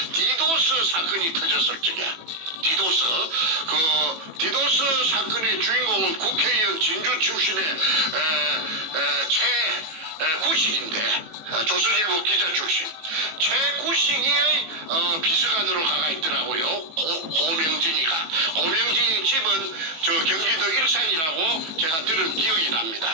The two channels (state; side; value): late; left; 18 ms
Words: 디도스 사건이 터졌을 적에 디도스 사건의 주인공은 국회의원 진주 출신의 최구식인데 조선일보 기자 출신 최구식이의 비서관으로 가가 있더라고요. 고명진이 집은 경기도 일산이라고 제가 들은 기억이